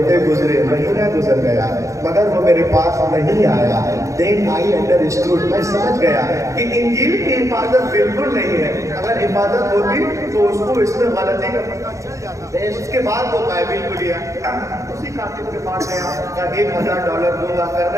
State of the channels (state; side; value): late; left; 0.15 ms